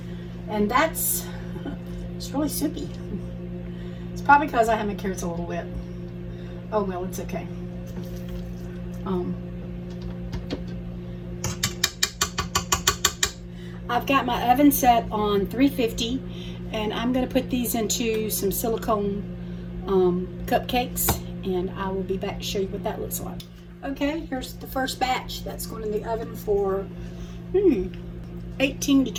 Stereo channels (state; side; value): identical; both; correlation 1.00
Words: And that's, it's really soupy. It's probably because I have my carrots a little wet. Oh well, it's okay. I've got my oven set on 350, and I'm going to put these into some silicone cupcakes, and I will be back to show you what that looks like. Okay, here's the first batch that's going in the oven for 18 to